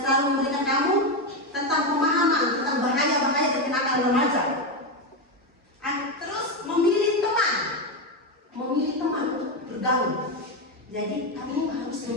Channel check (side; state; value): both; normal; correlation 0.10